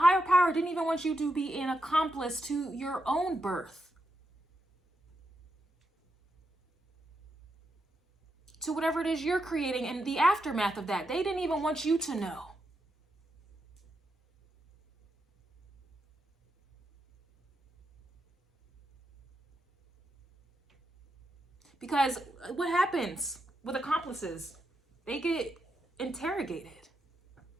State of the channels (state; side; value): normal; both; correlation 0.84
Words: power, didn't even want you to be an accomplice to your own birth. To whatever it is you're creating and the aftermath of that. They didn't even want you to know. Because what happens with accomplices? They get interrogated.